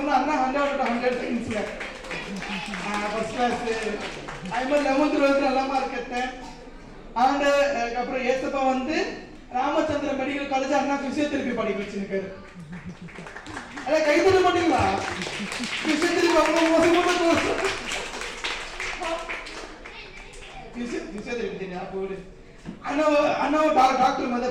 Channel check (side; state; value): both; identical; correlation 1.00